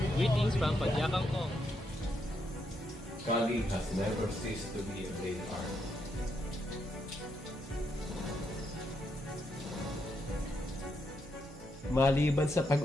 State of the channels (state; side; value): normal; both; correlation 0.79